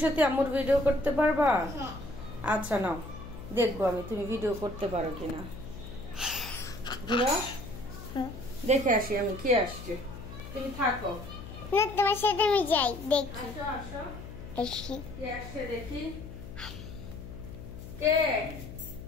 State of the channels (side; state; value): left; noise; hum, 12 dB below the sound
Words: সত্যি আম্মুর ভিডিও করতে পারবা? হ্যাঁ। আচ্ছা নাও, দেখবো আমি তুমি ভিডিও করতে পারো কিনা। ঘুরো, দেখে আসি আমি কি আসছে। তুমি থাকো না, তোমার সাথে আমি যাই দেখি। আসো আসো, আসি। কি আসছে দেখি। কে?